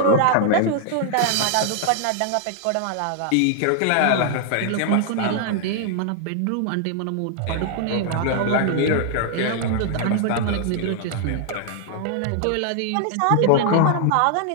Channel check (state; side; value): different; both; correlation 0.00